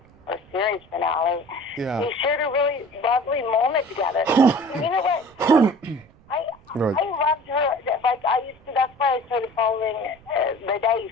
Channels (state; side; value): noise; right; rumble, 27 dB below the sound